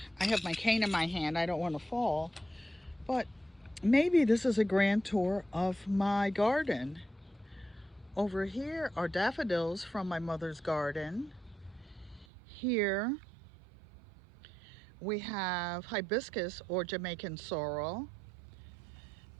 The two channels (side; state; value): left; drops out; at 12.2 s